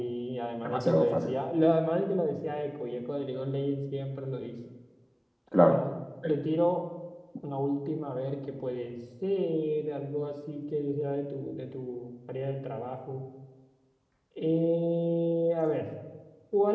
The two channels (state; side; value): identical; both; correlation 1.00